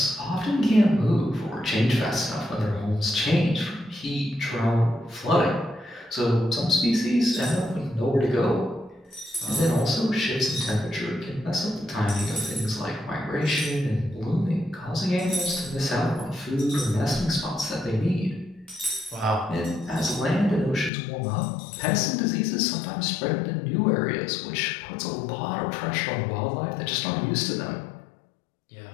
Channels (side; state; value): right; drops out; at 20.9 s